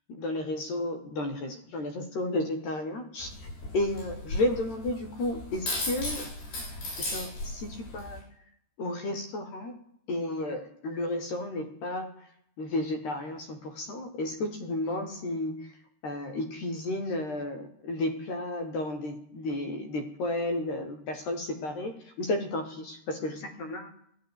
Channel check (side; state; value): right; late; 13 ms